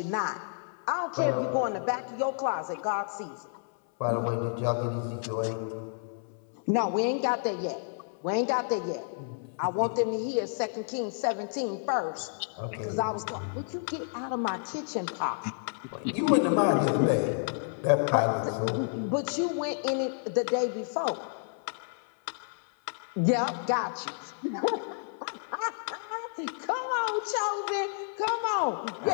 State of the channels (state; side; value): silent; right; 58 dB below the other